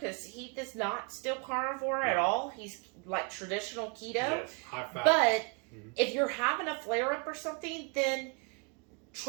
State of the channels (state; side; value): quieter; left; 32.3 dB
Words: Heath is not still carnivore at all. He's like traditional keto. Yes, high fat. But if you're having a flare-up or something, then